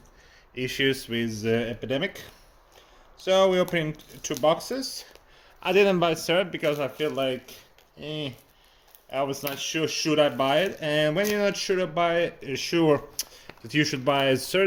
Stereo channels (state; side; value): identical; both; correlation 1.00